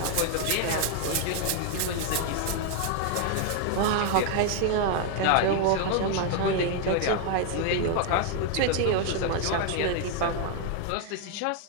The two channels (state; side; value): different; both; correlation 0.00